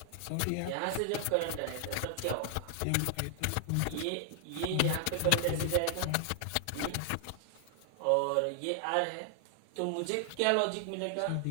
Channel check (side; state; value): both; different; correlation 0.00